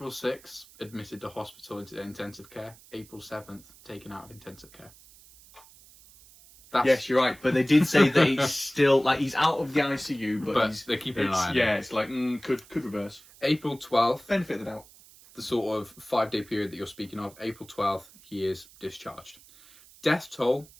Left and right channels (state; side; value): noise; right; hiss, 24 dB below the sound